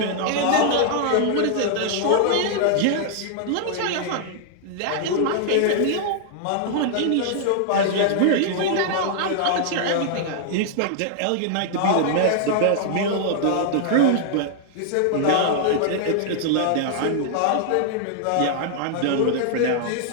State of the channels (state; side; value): different; both; correlation -0.01